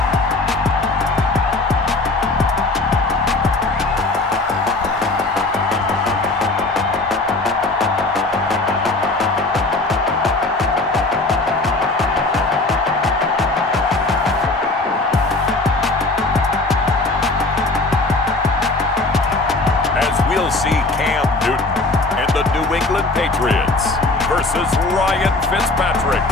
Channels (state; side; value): quieter; right; 3.1 dB